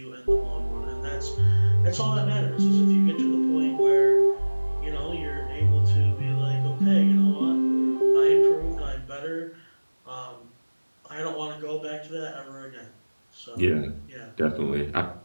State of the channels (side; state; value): both; inverted; correlation -1.00